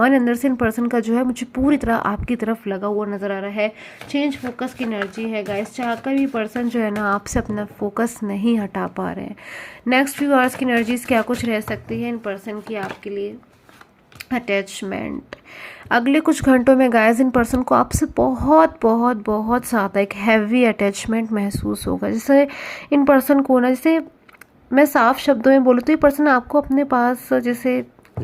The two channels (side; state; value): both; identical; correlation 1.00